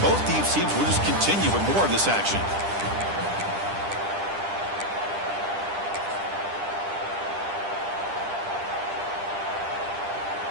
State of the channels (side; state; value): left; late; 10 ms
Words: both these teams will just continue with more of this action.